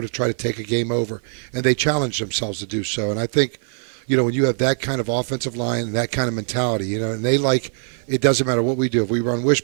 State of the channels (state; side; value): silent; left; 55 dB below the other